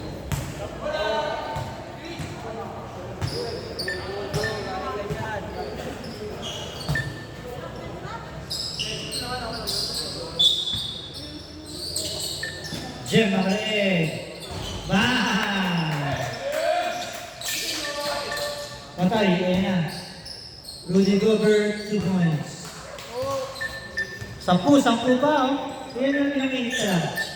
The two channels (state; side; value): identical; both; correlation 1.00